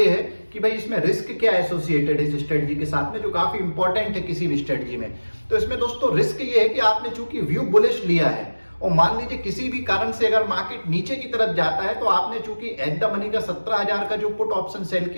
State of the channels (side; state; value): both; inverted; correlation -1.00